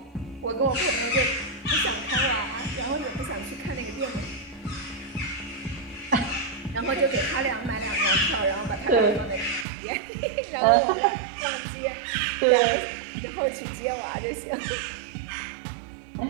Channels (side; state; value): left; drops out; at 9.7 s